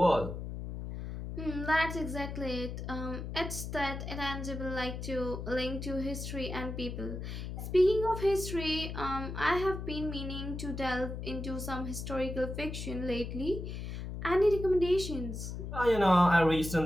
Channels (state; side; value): noise; left; hum, 6 dB below the sound